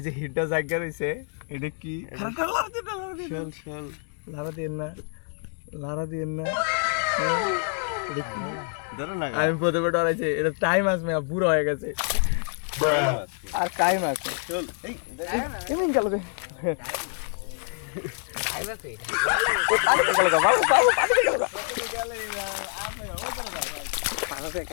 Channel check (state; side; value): silent; right; 57 dB below the other